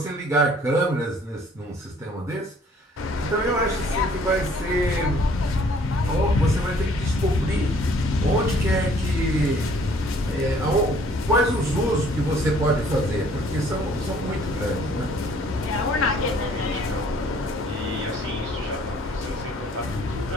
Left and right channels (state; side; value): normal; both; correlation 0.58